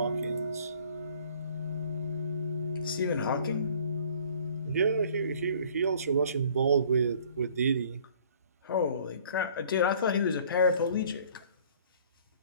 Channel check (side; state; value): both; inverted; correlation -0.54